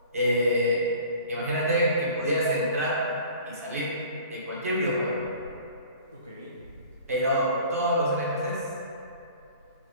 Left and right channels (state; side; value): inverted; both; correlation -0.46